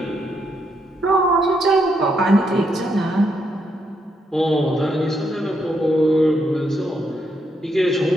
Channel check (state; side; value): normal; both; correlation 0.78